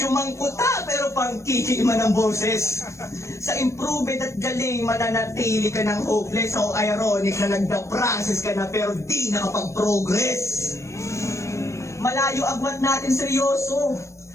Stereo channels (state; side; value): late; right; 0.14 ms